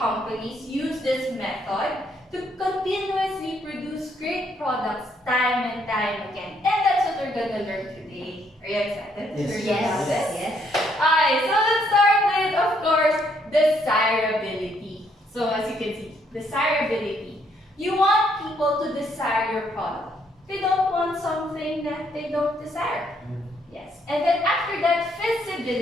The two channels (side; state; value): both; normal; correlation 0.70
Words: use this method to continuously produce great products time and time again. And that's what we're gonna learn today. Are you excited to learn about this? Yes. Alright, so let's start with, of course, desirability. So as you can see, desirability. You want people to desire your product. They don't want something that they don't desire. Yes. And then after that,